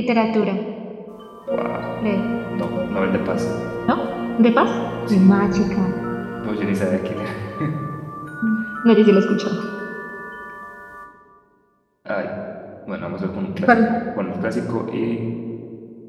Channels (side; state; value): both; identical; correlation 1.00